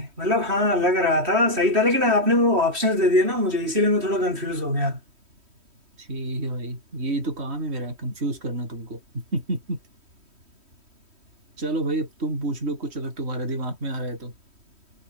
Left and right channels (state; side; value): late; left; 3.1 ms